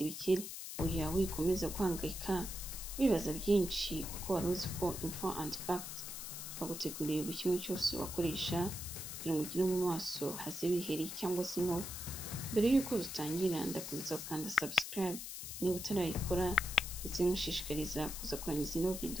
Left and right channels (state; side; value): noise; left; hiss, 8 dB below the sound